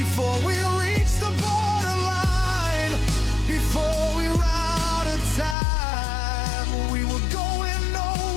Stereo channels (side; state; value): right; drops out; at 5.6 s